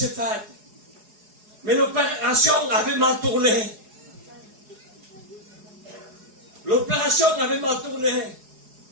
faite. Mais l'opération avait mal tourné. L'opération avait mal tourné.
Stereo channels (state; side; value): late; left; 4.8 ms